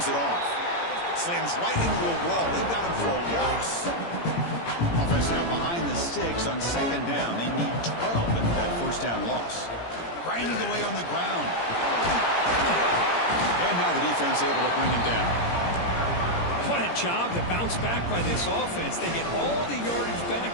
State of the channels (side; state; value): right; late; 17 ms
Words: it off. Slams right into a wall. They've got him for a loss. Offense now behind the 6 on 2nd down. They need 12 into that 1st down loss. Grinding away on the ground. And now the defense able to bring him down. What a job to bounce back by this offense. They get all the yardage